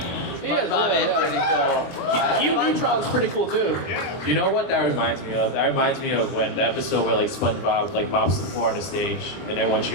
SpongeBob is pretty cool. SpongeBob's pretty cool too. You know what that reminds me of? That reminds me of when the episode where like SpongeBob like mops the floor on the stage and everyone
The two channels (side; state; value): right; late; 22 ms